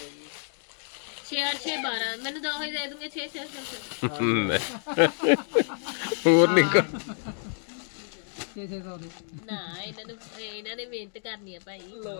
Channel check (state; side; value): silent; right; 59 dB below the other